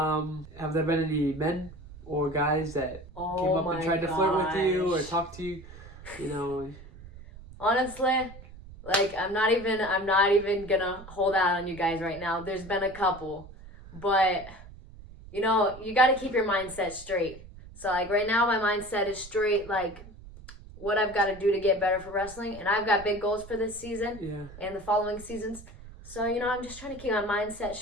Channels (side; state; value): right; noise; rumble, 17 dB below the sound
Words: there been any men or guys that came up and tried to flirt with you or talk to you? You know. Honestly, like I'm not even gonna hold out on you guys right now. There's been a couple, but you know, you got to keep your mindset straight. So like right now, my mindset is straight. Like what I've got to do to get better for wrestling, and I've got big goals for this season and the following seasons. So you know, I'm just trying to keep my mindset